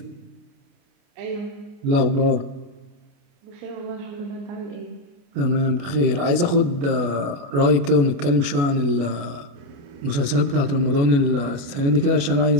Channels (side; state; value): left; late; 28 ms